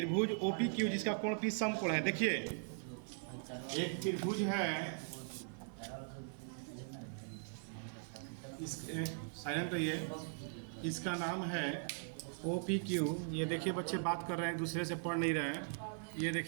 OPQ जिसका कोण P समकोण है, देखिए एक त्रिभुज है, साइलेंट रहिए, इसका नाम है OPQ। ये देखिए बच्चे बात कर रहे हैं, दूसरे से पढ़ नहीं रहे हैं। ये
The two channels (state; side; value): silent; left; 51 dB below the other